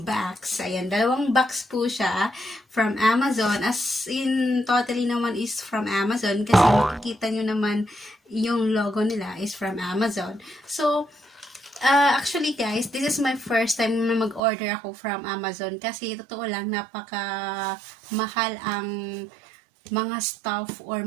box. Ayan, dalawang box po siya from Amazon. As in, totally naman is from Amazon. Kasi makikita nyo naman yung logo nila is from Amazon. So, actually guys, this is my first time na mag-order ako from Amazon. Kasi, totoo lang, napaka-mahal ang mga stuff or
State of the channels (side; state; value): left; drops out; at 14.4 s